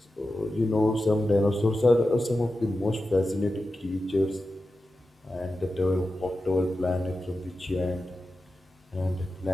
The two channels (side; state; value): both; normal; correlation 0.92